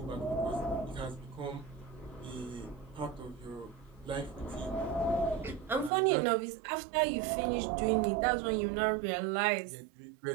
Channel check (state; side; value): drops out; left; at 5.9 s